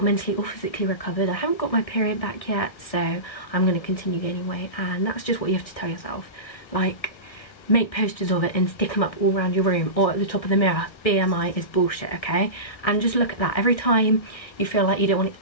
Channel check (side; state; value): right; late; 1.5 ms